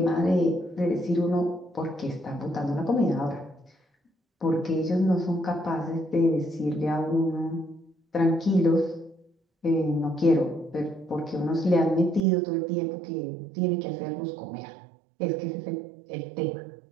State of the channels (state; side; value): drops out; left; at 12.2 s